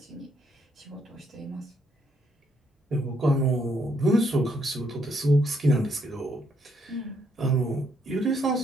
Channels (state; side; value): normal; both; correlation 0.73